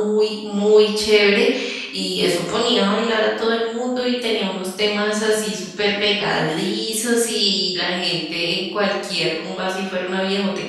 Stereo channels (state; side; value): identical; both; correlation 1.00